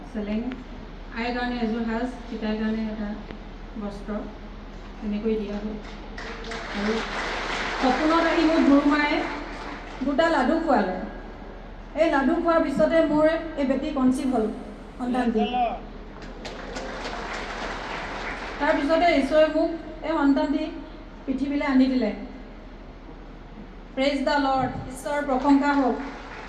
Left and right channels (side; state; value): both; identical; correlation 1.00